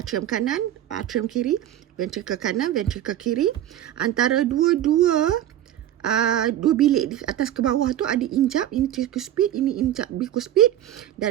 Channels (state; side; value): quieter; left; 12.0 dB